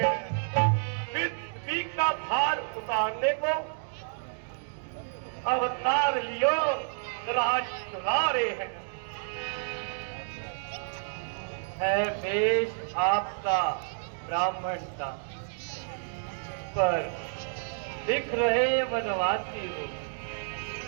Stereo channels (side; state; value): left; silent; digital silence